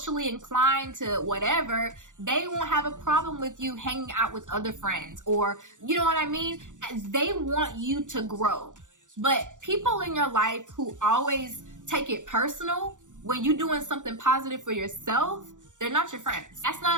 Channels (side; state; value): left; late; 0.86 ms